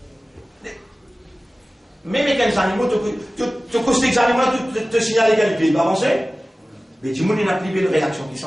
Même les animaux, tu costes les animaux, te signaler qu'elle peut avancer. Mais du monde, il n'a plus de réaction qui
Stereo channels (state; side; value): normal; both; correlation 0.97